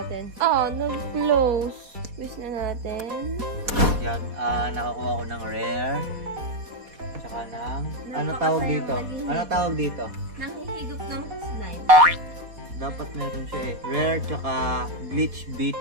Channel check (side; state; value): left; late; 4.2 ms